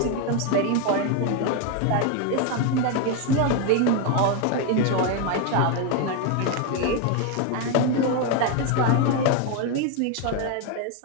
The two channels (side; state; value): both; different; correlation 0.01